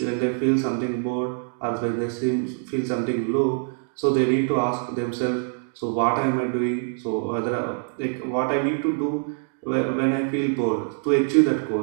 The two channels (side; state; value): left; silent; 62 dB below the other